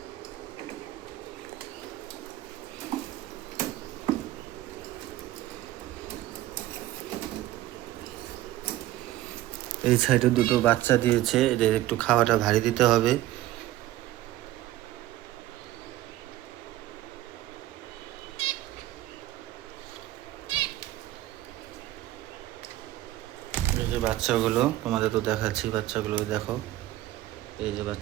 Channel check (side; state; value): left; quieter; 15.0 dB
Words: এই সাইডে দুটো বাচ্চা দিয়েছে, এদের একটু খাওয়াটা ভারী দিতে হবে। এই যে বাচ্চাগুলো তোমাদের তো দেখাচ্ছি, বাচ্চাগুলো দেখো, এই যে